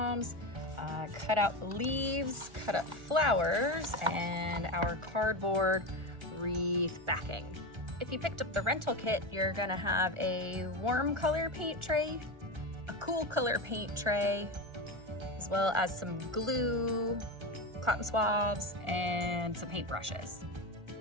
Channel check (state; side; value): late; left; 1.4 ms